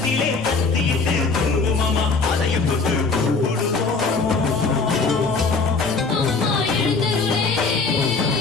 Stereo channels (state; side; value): quieter; right; 4.2 dB